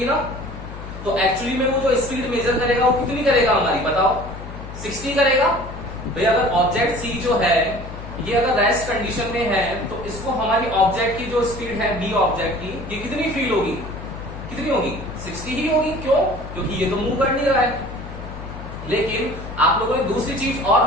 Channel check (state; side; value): noise; left; hum, 11 dB below the sound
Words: ना. तो एक्चुअली में वो जो स्पीड मेजर करेगा वो कितनी करेगा हमारी, बताओ, 60 करेगा. भाई अगर ऑब्जेक्ट सी जो है ये अगर रेस्ट कंडीशन में है तो इसको हमारी ऑब्जेक्ट की जो स्पीड है बी ऑब्जेक्ट की, ये कितनी फील होगी, कितनी होगी, 60 ही होगी. क्यों? क्योंकि ये तो मूव कर नहीं रहा है. लेकिन आप लोगों ने दूसरी चीज